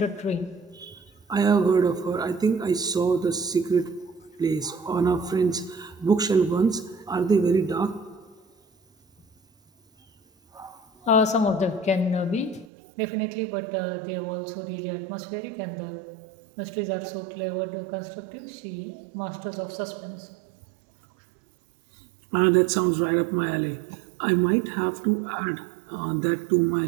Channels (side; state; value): left; drops out; at 12.7 s